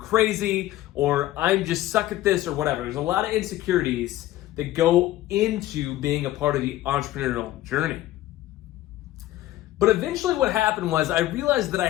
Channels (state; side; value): quieter; right; 15.0 dB